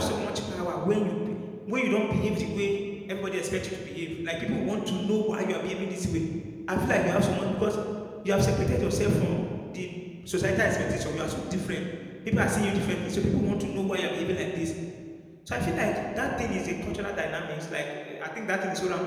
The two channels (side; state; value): both; identical; correlation 1.00